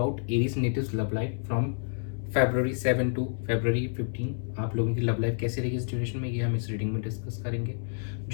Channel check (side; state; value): right; silent; 59 dB below the other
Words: Aries natives love life from February 7 to February 15। आप लोगों की love life कैसे रहेगी इस duration में, ये हम इस रीडिंग में डिस्कस करेंगे।